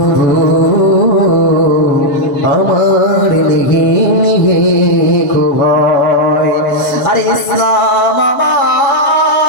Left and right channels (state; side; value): late; right; 7.0 ms